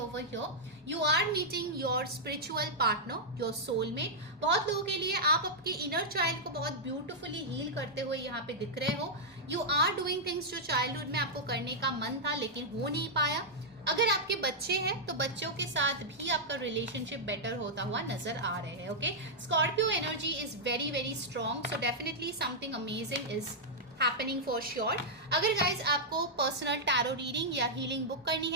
over here. You are meeting your spiritual partner, your soulmate. बहुत लोगों के लिए आप आपके inner child को बहुत beautifully heal करते हुए यहाँ पे दिख रहे हो. You are doing things जो childhood में आपको करने का मन था लेकिन हो नहीं पाया. अगर आपके बच्चे हैं तो बच्चों के साथ भी आपका रिलेशनशिप बेटर होता हुआ नजर आ रहे हैं. Okay, Scorpio energy is very strong. So definitely something amazing is happening for sure. अगर गाइज आपको पर्सनल टैरो रीडिंग या हीलिंग बुक करनी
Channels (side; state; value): both; normal; correlation -0.07